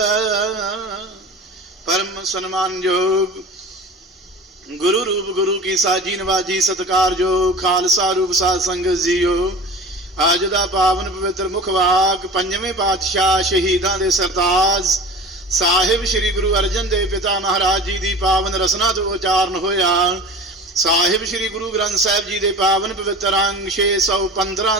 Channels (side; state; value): both; normal; correlation 0.37